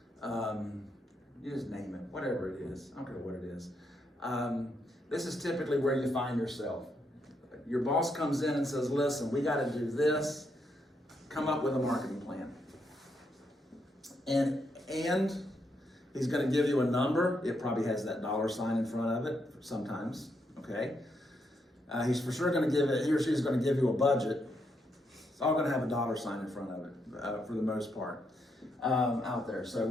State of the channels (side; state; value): both; normal; correlation 0.78